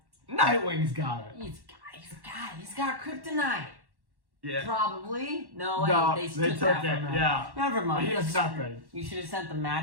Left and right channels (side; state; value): left; late; 1.1 ms